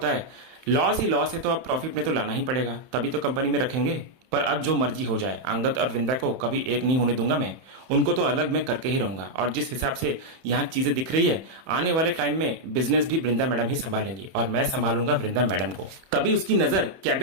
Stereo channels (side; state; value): left; late; 31 ms